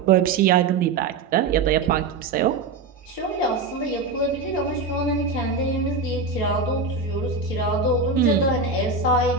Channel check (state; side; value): quieter; left; 4.2 dB